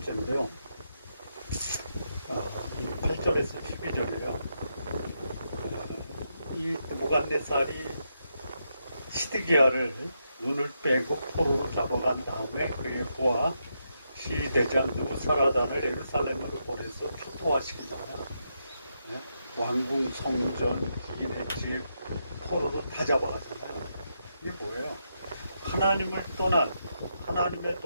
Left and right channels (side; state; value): both; inverted; correlation -0.82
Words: 이 8절에서 12절이요. 이 무갓네살이 시드기야를 눈을 빼고 포로로 잡아간 다음에 그의 부하 시대장 느부사라단을 예루살렘으로 보내서 초토화시키잖아요. 네? 왕궁, 성전, 이네 집, 포로로 다 잡아가잖아요. 이게 뭐예요? 하나님을 떠난 하나님의